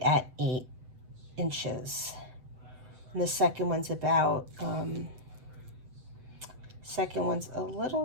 at 8 inches. And the second one's about, second one's a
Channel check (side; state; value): left; late; 7.9 ms